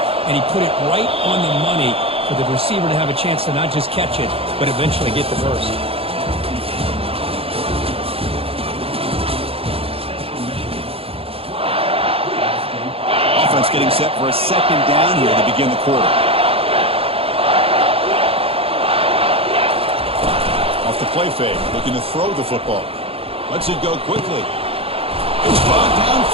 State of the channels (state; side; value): late; left; 0.27 ms